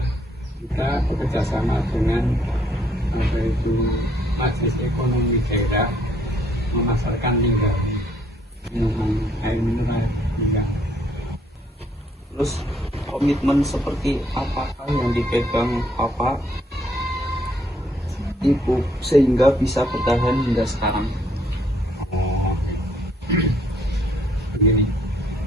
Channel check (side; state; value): both; normal; correlation 0.68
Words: Kita bekerja sama dengan apa itu Majelis Ekonomi Daerah memasarkan limbah minuman air mineral limbah. Terus komitmen seperti apakah yang dipegang Bapak Ibu sehingga bisa bertahan hingga sekarang? Begini,